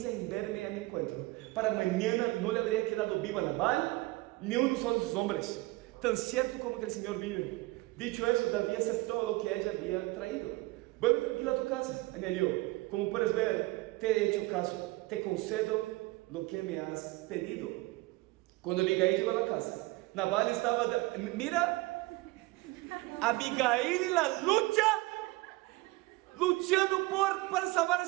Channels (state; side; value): quieter; left; 21.4 dB